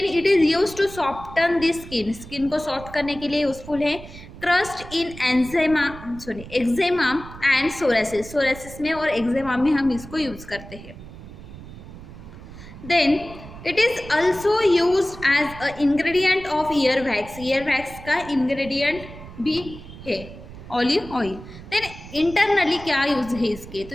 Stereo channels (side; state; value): right; noise; rumble, 15 dB below the sound